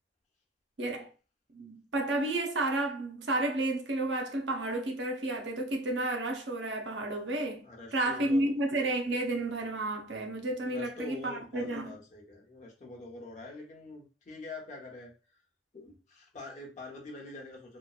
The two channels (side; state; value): both; normal; correlation 0.39